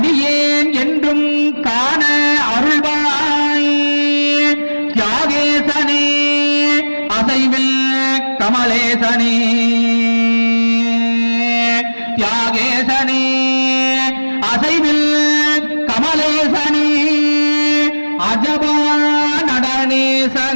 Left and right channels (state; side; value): inverted; both; correlation -1.00